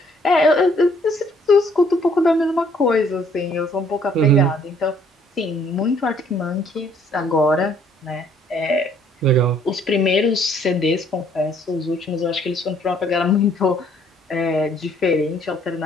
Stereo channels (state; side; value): normal; both; correlation 0.63